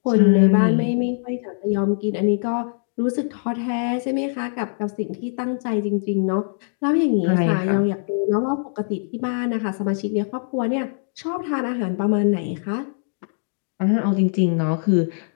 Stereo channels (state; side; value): silent; right; digital silence